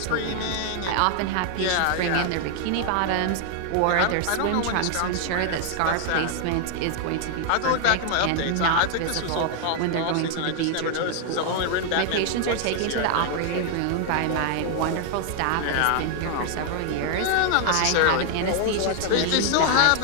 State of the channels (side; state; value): both; different; correlation 0.00